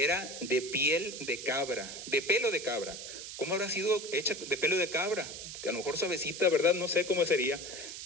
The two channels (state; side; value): noise; right; hiss, 9 dB below the sound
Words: de piel de cabra, de pelo de cabra. ¿Cómo habrá sido hecha de pelo de cabra? Que a lo mejor suavecita, ¿verdad? No sé cómo sería.